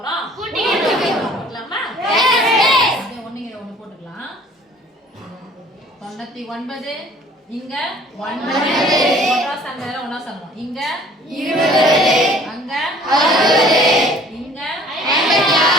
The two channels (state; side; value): normal; both; correlation 0.52